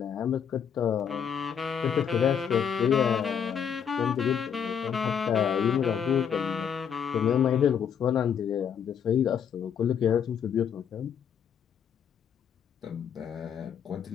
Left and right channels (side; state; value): right; quieter; 7.8 dB